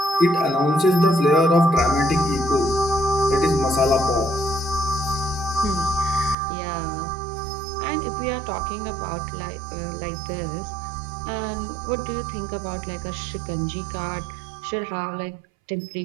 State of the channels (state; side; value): drops out; left; at 6.4 s